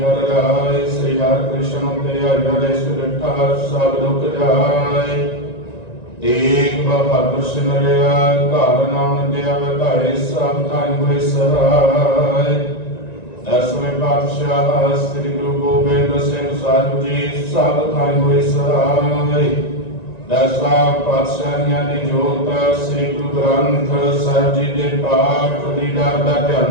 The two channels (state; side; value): late; right; 1.9 ms